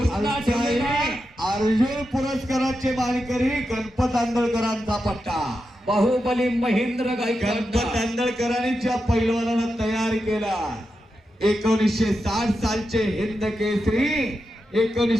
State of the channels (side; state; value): both; normal; correlation 0.88